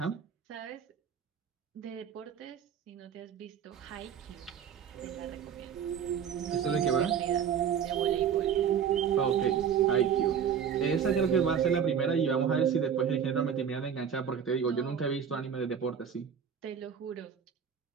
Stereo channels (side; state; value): left; quieter; 7.8 dB